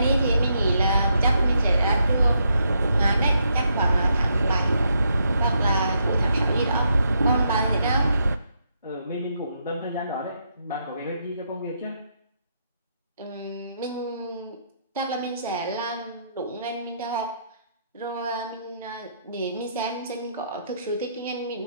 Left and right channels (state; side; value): inverted; both; correlation -0.78